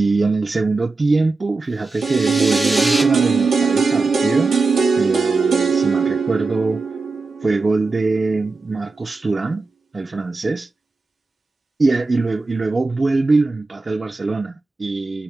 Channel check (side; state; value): left; quieter; 3.7 dB